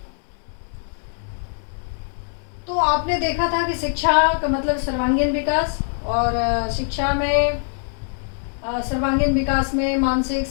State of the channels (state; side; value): silent; right; digital silence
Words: तो आपने देखा था कि शिक्षा का मतलब सर्वांगीण विकास, और शिक्षा में सर्वांगीण विकास में मानसिक,